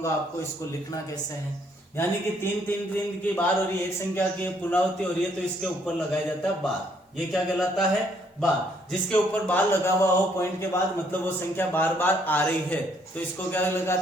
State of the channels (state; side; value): normal; both; correlation 0.68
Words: आपको, इसको लिखना कैसे है, यानी कि 3 की बार हो रही है, एक संख्या की पुनरावृत्ति हो रही है तो इसके ऊपर लगाया जाता है बार, ये क्या कहलाता है, बार। जिसके ऊपर बार लगा हुआ हो पॉइंट के बाद, मतलब वो संख्या बार बार आ रही है तो इसको क्या